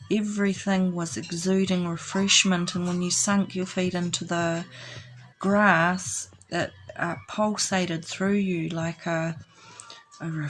Everything was exuding refreshment, and when you sunk your feet into the grass, it pulsated through you like a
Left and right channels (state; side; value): identical; both; correlation 1.00